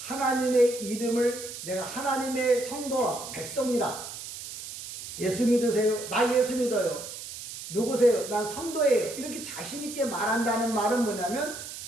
이름을 내가 하나님의 성도라 백성이라 예수 믿으세요? 나 예수 믿어요. 누구세요? 난 성도예요. 이렇게 자신 있게 말한다는 말은 뭐냐면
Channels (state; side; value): noise; right; hiss, 10 dB below the sound